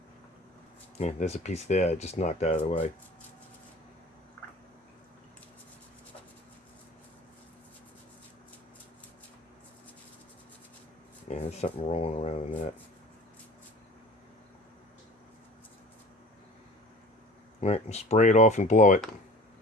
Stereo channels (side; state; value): both; normal; correlation 0.42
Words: Yeah, there's a piece there I just knocked out of the way. Yeah, there's something rolling around in that. All right, spray it off and blow it.